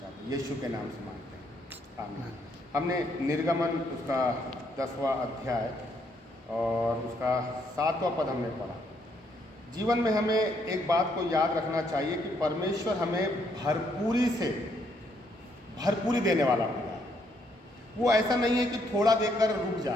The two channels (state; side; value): normal; both; correlation 0.72